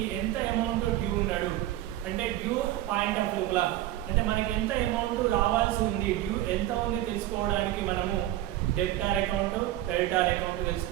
ఎంత అమౌంట్ డ్యూ ఉన్నాడు, అంటే డ్యూ పాయింట్ ఆఫ్ వ్యూలా అంటే మనకి ఎంత అమౌంట్ రావాల్సి ఉంది, డ్యూ ఎంత ఉంది తెలుసుకోవడానికి మనము డెబ్టార్ అకౌంట్, క్రెడిటార్ అకౌంట్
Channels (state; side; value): quieter; left; 14.4 dB